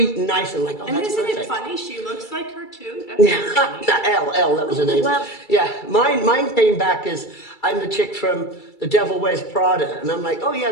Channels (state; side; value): late; right; 2.3 ms